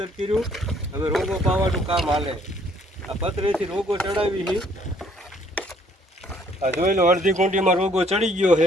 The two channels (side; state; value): both; normal; correlation 0.63